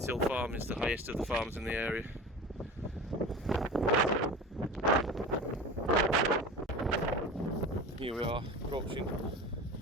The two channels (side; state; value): both; normal; correlation 0.34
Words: Hill Farm is, the highest of the farms in the area. Here we are, approaching